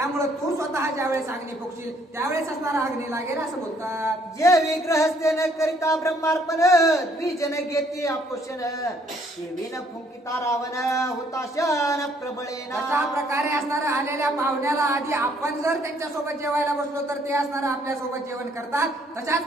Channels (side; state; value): both; normal; correlation 0.65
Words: तू स्वतः ज्यावेळेस अग्नी फुकशील त्यावेळेस असणारा अग्नी लागेल असं बोलतात. जे विग्रहस्ते न करिता ब्रह्मार्पण द्विजन घेते आपोषण विन फुंकिता रावण हुताशन प्रबळेना. अशा प्रकारे असणारा आलेल्या पाहुण्याला आधी आपण जर त्यांच्यासोबत जेवायला बसलो तर ते असणारं आपल्या सोबत जेवण करतात.